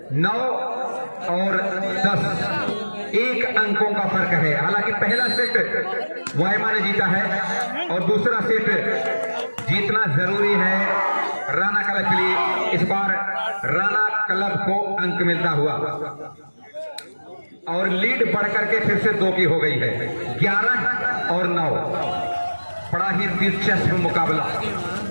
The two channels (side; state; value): both; inverted; correlation -1.00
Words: 9 और 10 1 अंकों का फर्क है। हालांकि पहला सेट मोइमा ने जीता है और दूसरा सेट जीतना जरूरी है राणा क्लब के लिए। इस बार राणा क्लब को अंक मिलता हुआ और लीड बढ़कर के फिर से 2 की हो गई है, 11 और 9। बड़ा ही दिलचस्प मुकाबला